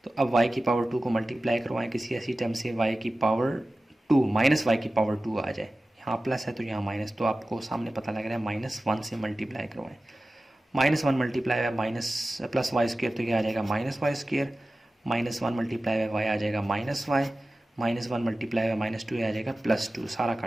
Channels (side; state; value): both; normal; correlation 0.95